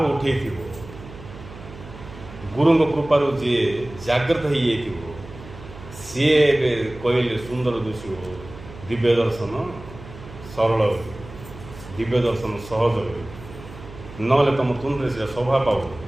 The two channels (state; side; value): noise; right; hum, 16 dB below the sound